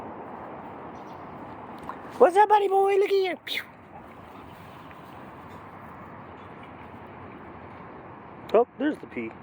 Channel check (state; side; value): identical; both; correlation 1.00